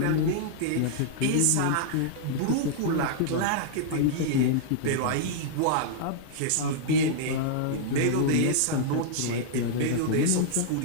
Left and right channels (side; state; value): both; different; correlation -0.01